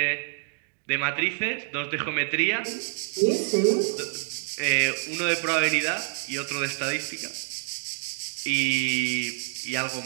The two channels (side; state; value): left; silent; digital silence